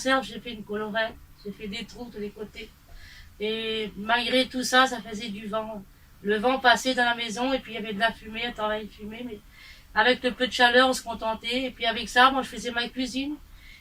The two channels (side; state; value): both; identical; correlation 1.00